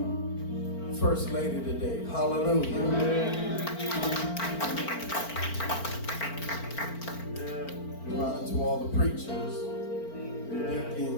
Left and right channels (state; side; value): late; right; 4.4 ms